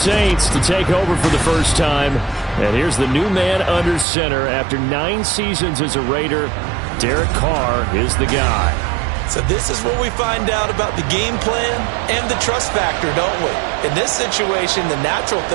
to take over for the first time. And here's the new man under center. After 9 seasons as a Raider, Derek Carr is the guy. So this is where we find out about the game plan and the trust factor, don't we? In this situation, the natural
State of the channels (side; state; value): left; drops out; at 4.0 s